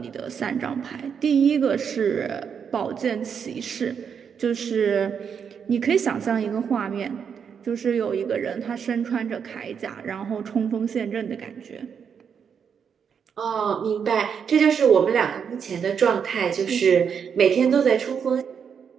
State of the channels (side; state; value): left; quieter; 7.1 dB